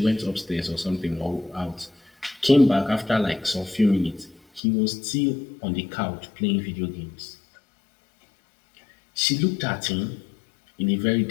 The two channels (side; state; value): right; drops out; at 4.6 s